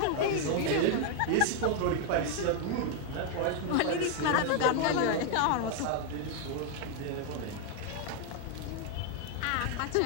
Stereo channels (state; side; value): different; both; correlation 0.00